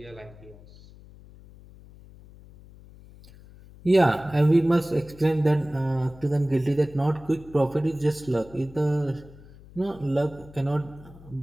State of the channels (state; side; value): noise; left; hum, 21 dB below the sound